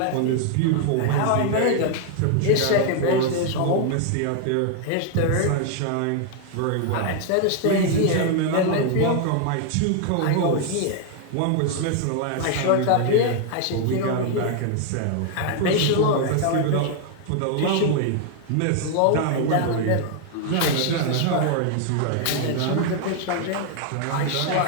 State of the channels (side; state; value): both; different; correlation 0.00